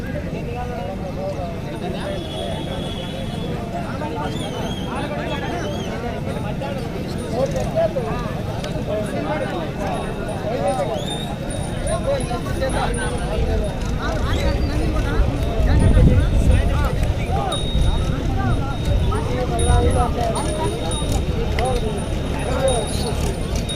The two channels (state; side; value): identical; both; correlation 1.00